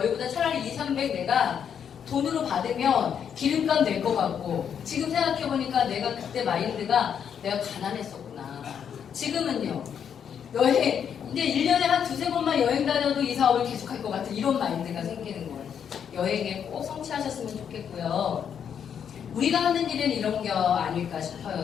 차라리 2, 300 내가 돈으로 받으면 기름값 낼 것 같고 지금 생각해 보니까 내가 그때 마인드가 내가 가난했었구나. 지금은요. 여행 근데 1년에 한 2, 3번만 여행 다녀도 이 사업을 계속할 것 같은 이런 마인드가 생기는 거예요. 여행에 꼭 성취하셨으면 좋겠고요. 우리가 하는 일은 이런 게 아닐까 싶어요,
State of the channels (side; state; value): right; quieter; 8.0 dB